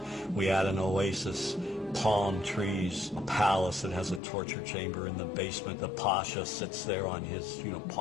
We add an oasis, palm trees, a palace that has a torture chamber in the basement. The pasha sits there on his,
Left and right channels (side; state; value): right; drops out; at 4.2 s